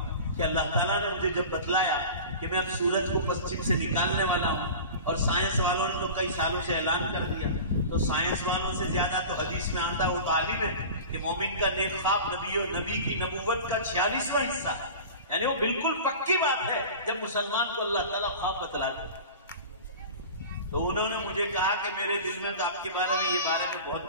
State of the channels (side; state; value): both; inverted; correlation -0.35